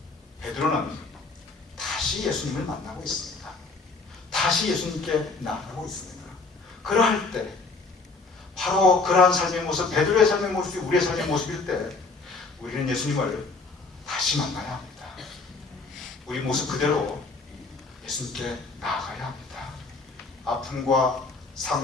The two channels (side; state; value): right; quieter; 3.9 dB